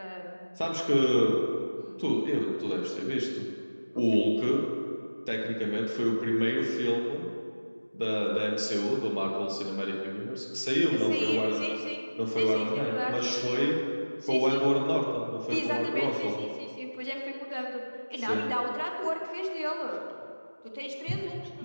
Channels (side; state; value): both; inverted; correlation -1.00